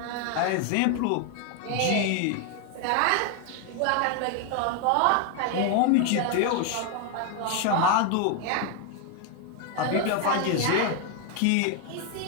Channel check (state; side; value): different; both; correlation 0.01